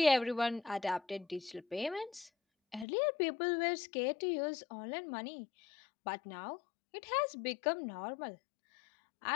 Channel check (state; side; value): drops out; right; at 2.9 s